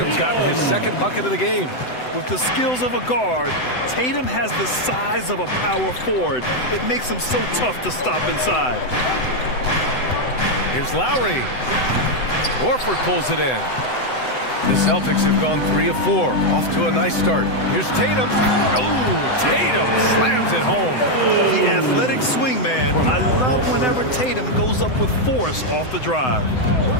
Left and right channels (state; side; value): late; right; 7.9 ms